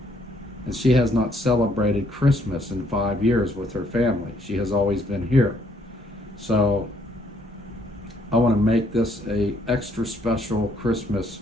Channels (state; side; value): normal; both; correlation 0.67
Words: And she has not celebrated Christmas in 5 years with her family. She has always been here. So I want to make this a extra special Christmas